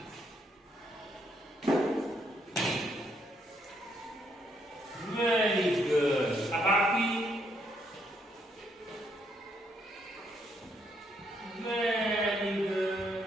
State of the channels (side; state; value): both; normal; correlation 0.73